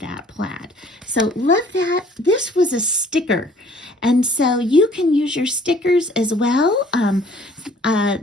plaid. So love that. This was a sticker, and so you can use your stickers as well.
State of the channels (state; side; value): normal; both; correlation 0.56